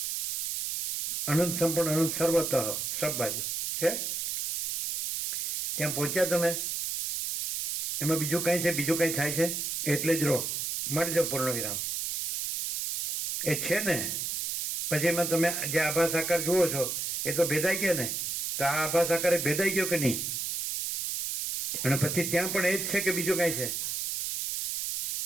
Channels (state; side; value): noise; right; hiss, 2 dB below the sound